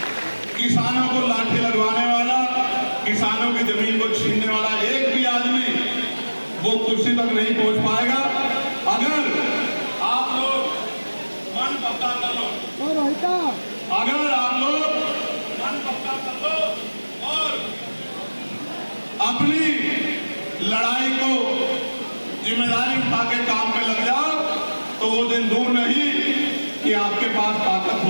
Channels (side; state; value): both; inverted; correlation -1.00